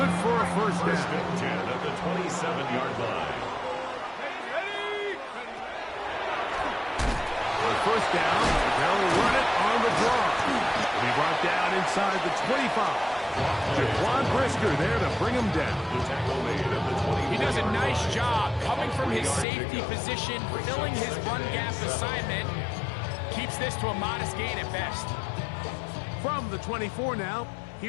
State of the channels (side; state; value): right; drops out; at 19.5 s